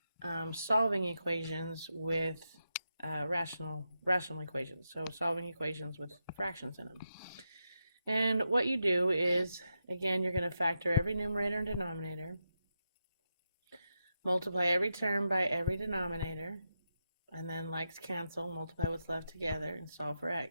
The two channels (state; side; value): inverted; both; correlation -0.86